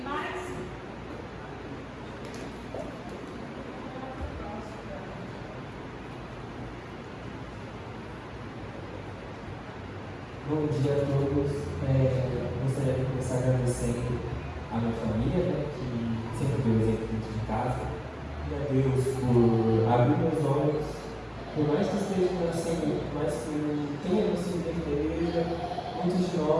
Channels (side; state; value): both; identical; correlation 1.00